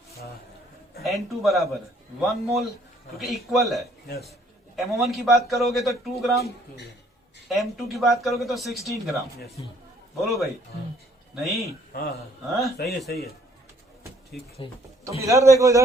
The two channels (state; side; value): normal; both; correlation 0.62